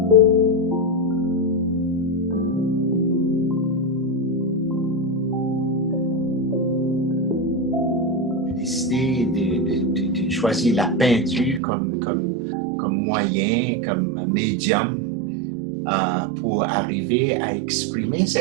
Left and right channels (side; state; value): left; drops out; at 11.6 s